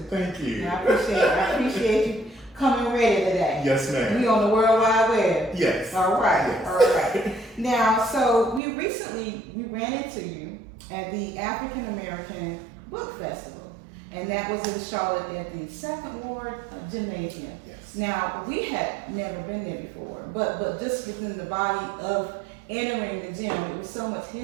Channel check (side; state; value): left; drops out; at 8.6 s